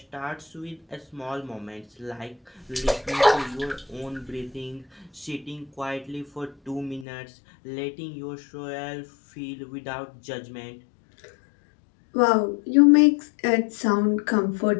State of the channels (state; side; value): drops out; right; at 7.1 s